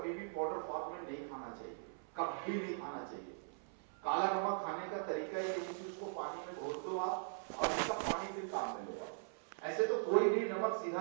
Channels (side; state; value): left; silent; 51 dB below the other